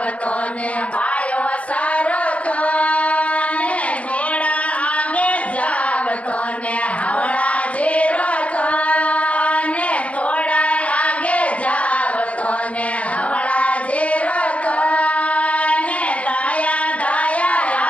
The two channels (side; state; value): right; late; 0.066 ms